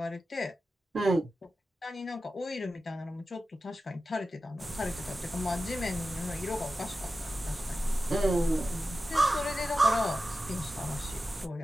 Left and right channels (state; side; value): normal; both; correlation 0.93